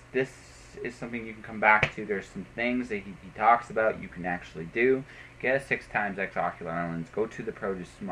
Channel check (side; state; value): both; identical; correlation 1.00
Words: is something you can come back to. There's some things that he talks about you can actually do. Get a 6 times X ocular lens, go to the produce